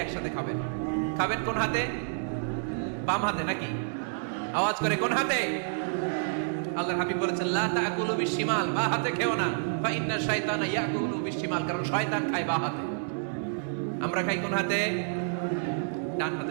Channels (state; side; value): silent; left; digital silence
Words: একসাথে খাবেন। খাবেন কোন হাতে? বাম হাতে নাকি? আওয়াজ করে কোন হাতে? আল্লাহর হাবিব বলেছেন, লা তাকুলু বিশিমাল, বা হাতে খেও না, ফা ইন্না শাইতানা ইয়াকুলু বিশিমাল, কারণ শয়তান খায় বা হাতে। আমরা খাই কোন হাতে? ডান হাতে।